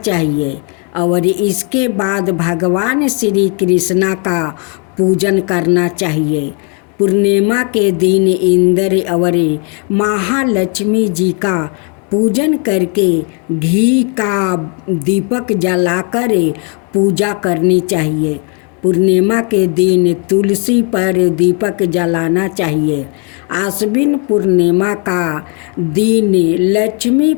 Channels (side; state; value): right; quieter; 37.3 dB